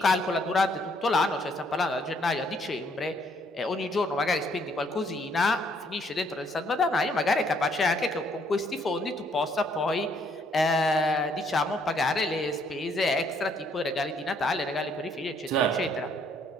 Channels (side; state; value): both; normal; correlation 0.67